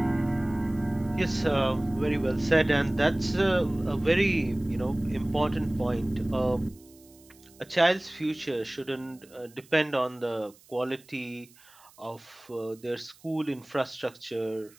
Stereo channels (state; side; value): noise; right; hiss, 27 dB below the sound